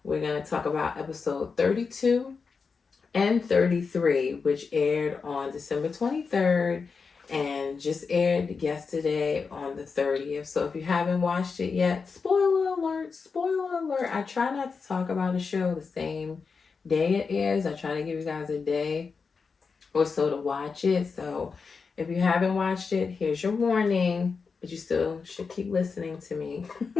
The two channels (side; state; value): right; quieter; 5.1 dB